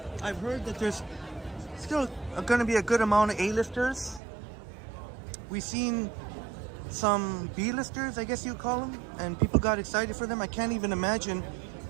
I've heard that there's still going to be a good amount of A-listers. We've seen some B-listers, I guess you call them, and people got excited for them. I can't even imagine.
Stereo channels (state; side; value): drops out; left; at 4.2 s